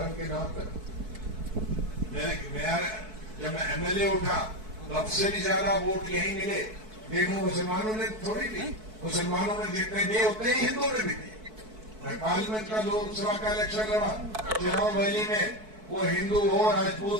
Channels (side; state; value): left; late; 4.6 ms